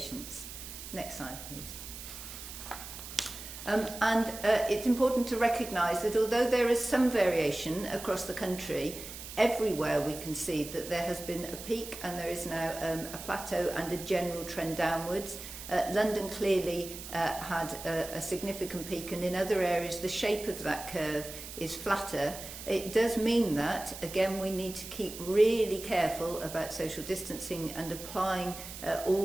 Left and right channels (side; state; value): right; noise; hiss, 11 dB below the sound